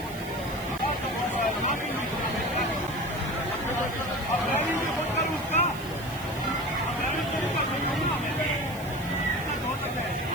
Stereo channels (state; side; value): noise; right; hiss, 16 dB below the sound